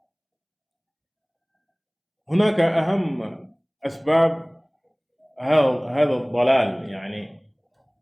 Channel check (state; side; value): identical; both; correlation 1.00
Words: hunaka aham asbab هذا الضلال يعني